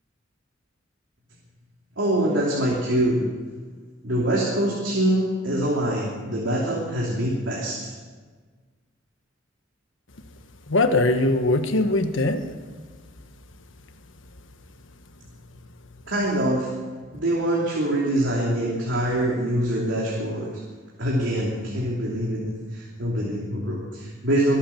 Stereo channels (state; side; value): normal; both; correlation 0.38